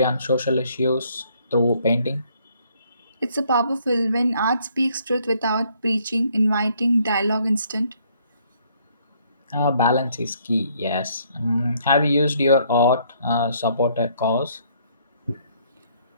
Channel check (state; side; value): inverted; both; correlation -0.66